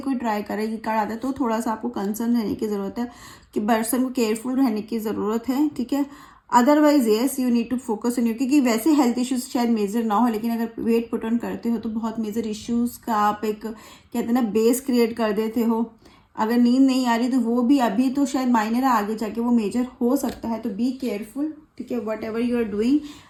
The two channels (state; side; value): identical; both; correlation 1.00